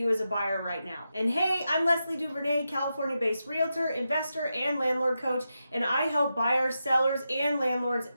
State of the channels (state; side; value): inverted; both; correlation -0.88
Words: as a buyer right now. And hey, I'm Leslie Duvernay, California-based realtor, investor, and landlord coach, and I help buyers, sellers, and landlords